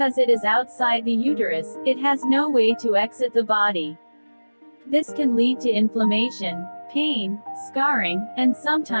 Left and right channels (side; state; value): both; inverted; correlation -1.00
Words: it is outside the uterus, it has no way to exit the body. This can lead to inflammation, pain, scarring, and